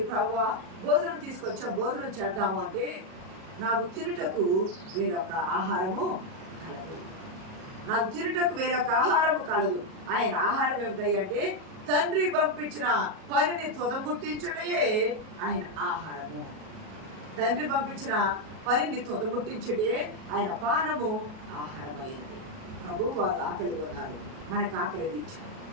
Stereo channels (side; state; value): left; late; 37 ms